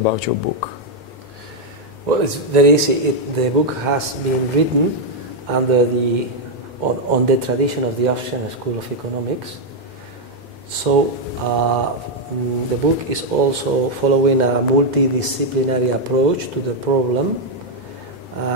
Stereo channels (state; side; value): normal; both; correlation 0.00